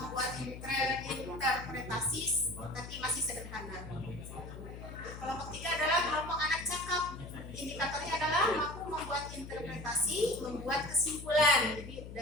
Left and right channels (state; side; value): noise; left; hum, 11 dB below the sound